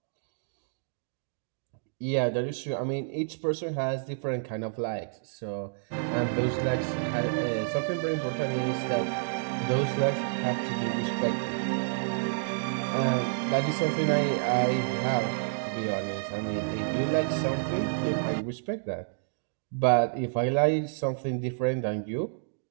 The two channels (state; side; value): silent; left; digital silence